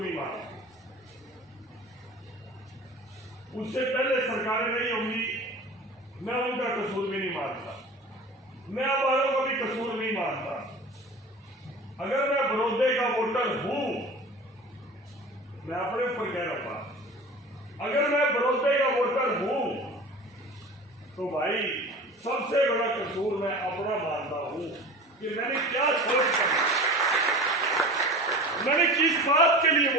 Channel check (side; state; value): both; normal; correlation 0.37